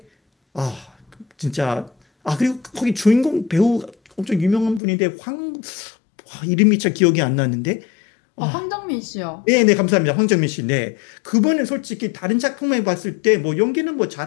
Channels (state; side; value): drops out; right; at 4.8 s